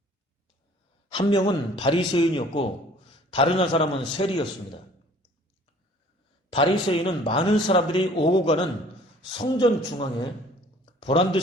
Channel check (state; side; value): normal; both; correlation 0.52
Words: 한 명은 바리새인이었고 다른 한 사람은 세리였습니다. 바리새인은 많은 사람들이 오고 가는 성전 중앙에